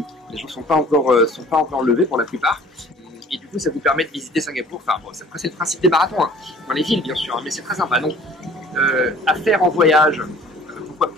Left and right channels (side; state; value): both; normal; correlation 0.51